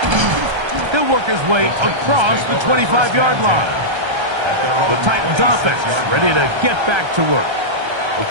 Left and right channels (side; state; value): left; late; 1.3 ms